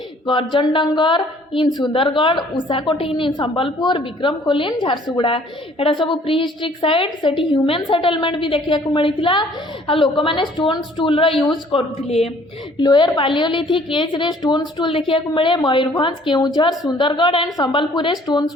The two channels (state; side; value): normal; both; correlation 0.57